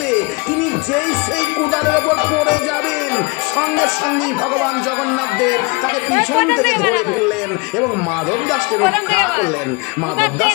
তিনি যেই সেই কোদালের ওপর পড়ে যাবেন, সঙ্গে সঙ্গেই ভগবান জগন্নাথ দেব তাকে পিছন থেকে ধরে ফেললেন এবং মাধব দাসকে রক্ষা করলেন। মাধব দাস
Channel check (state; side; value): quieter; right; 27.6 dB